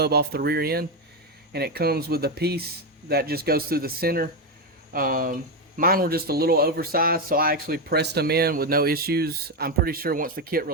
off the rear end, and it comes with a piece that just goes through the center. Mine were just a little oversized, so I actually pressed them in with no issues. I'm pretty sure once the kit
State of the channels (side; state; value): both; normal; correlation 0.08